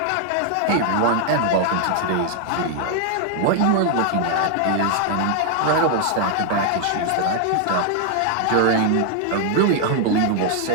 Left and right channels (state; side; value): different; both; correlation 0.00